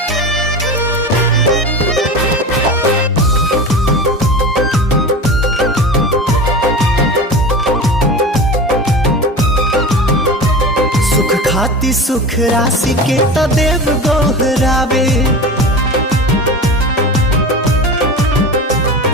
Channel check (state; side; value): normal; both; correlation 0.30